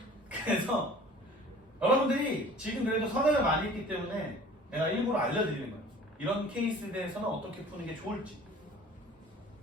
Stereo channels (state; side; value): normal; both; correlation 0.47